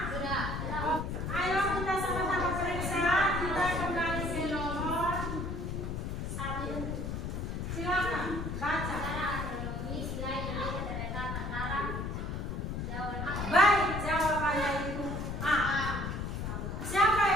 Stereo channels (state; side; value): noise; left; rumble, 3 dB below the sound